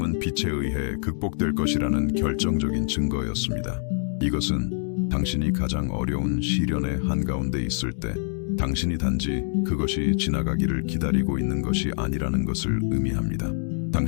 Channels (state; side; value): silent; right; digital silence